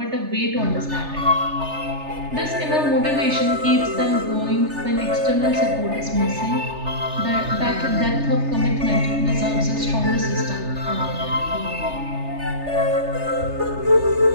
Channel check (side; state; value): left; late; 3.3 ms